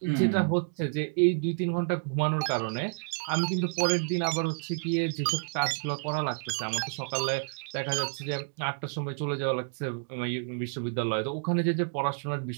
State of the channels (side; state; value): left; silent; digital silence